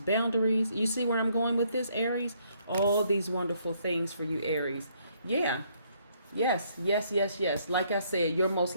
You see where I'm going with this, Aries? All these wonderful things for you, Aries. Yeah. Yes. Like I said, your most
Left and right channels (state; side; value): inverted; both; correlation -0.69